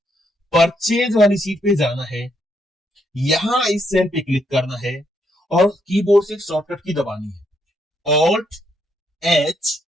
परचेज वाली सीट पे जाना है, यहां इस सेल पे क्लिक करना है और कीबोर्ड से शॉर्टकट की दबानी है, alt H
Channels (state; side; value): normal; both; correlation 0.75